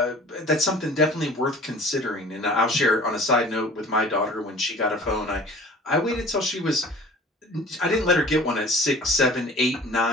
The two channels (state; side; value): normal; both; correlation 0.45